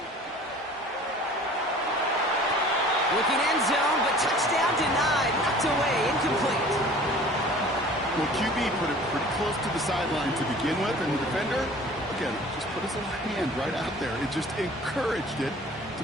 Looking end zone, but touchdown denied. Knocked away, incomplete. Well, QB put it pretty close to the sideline to begin with, and the defender, again, just put his little hand right out there. It just encouraged it to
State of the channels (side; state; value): both; normal; correlation 0.46